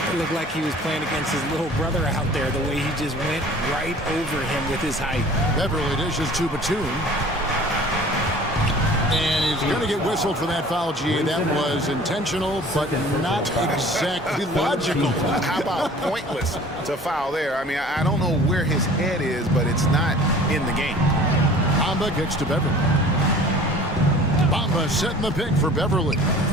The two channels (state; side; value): normal; both; correlation 0.46